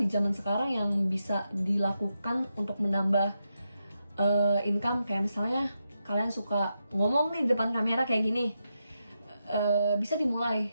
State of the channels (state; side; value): inverted; both; correlation -0.86